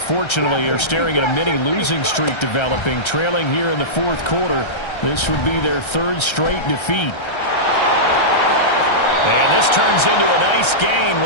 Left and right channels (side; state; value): right; late; 1.3 ms